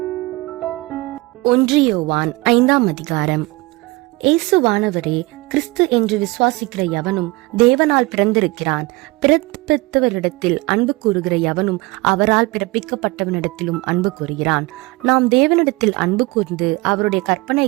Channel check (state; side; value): quieter; left; 22.8 dB